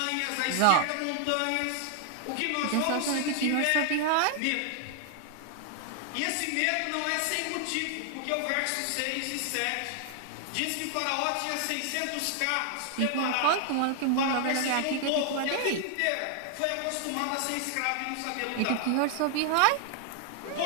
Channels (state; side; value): different; both; correlation 0.00